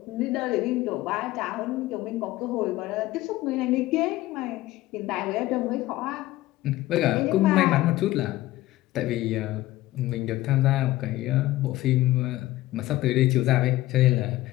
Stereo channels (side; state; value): right; quieter; 16.7 dB